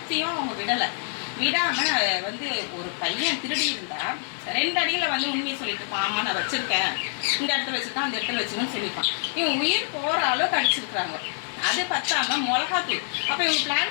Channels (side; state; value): right; silent; digital silence